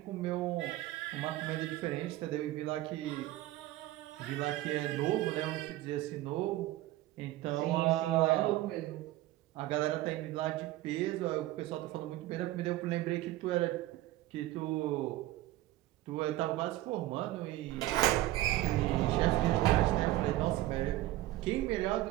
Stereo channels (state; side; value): quieter; left; 16.2 dB